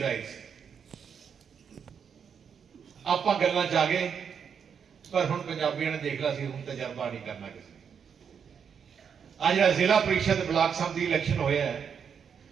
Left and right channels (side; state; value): left; quieter; 7.1 dB